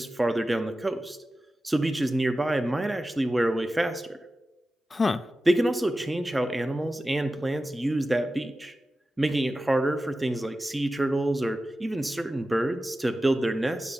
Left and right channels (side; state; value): both; normal; correlation 0.94